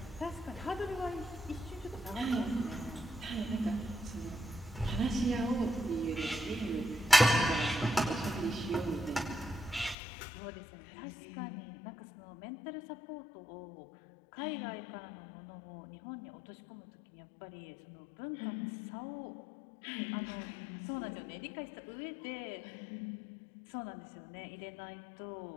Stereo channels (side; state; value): right; drops out; at 10.0 s